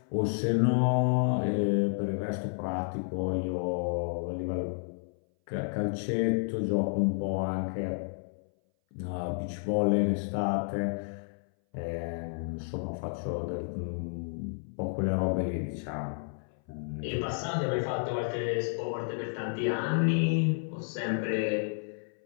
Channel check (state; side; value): silent; right; 57 dB below the other